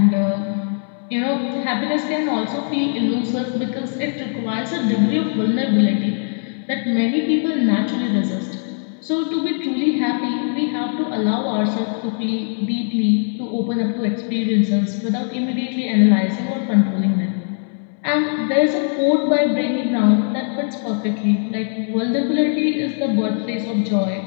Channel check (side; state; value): right; silent; 61 dB below the other